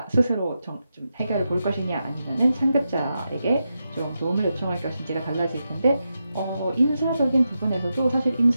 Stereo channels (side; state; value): both; inverted; correlation -0.87